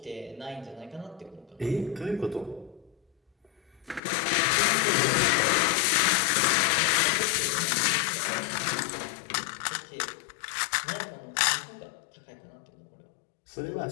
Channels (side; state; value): right; drops out; at 4.0 s